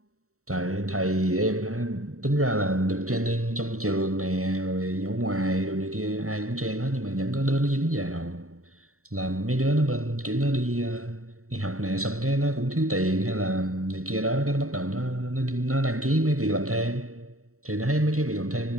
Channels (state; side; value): late; left; 0.64 ms